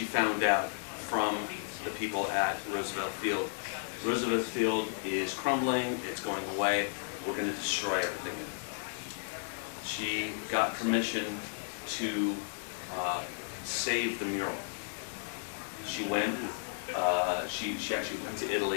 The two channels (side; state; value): right; silent; 55 dB below the other